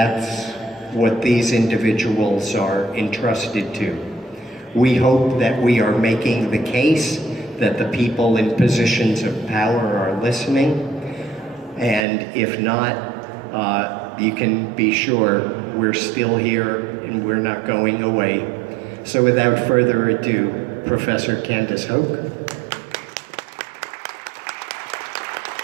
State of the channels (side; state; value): left; drops out; at 12.1 s